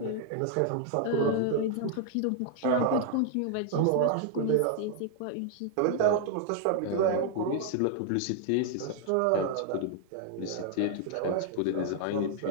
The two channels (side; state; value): both; different; correlation 0.00